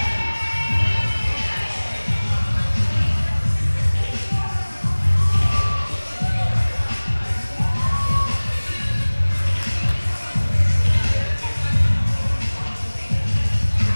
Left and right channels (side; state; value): both; inverted; correlation -1.00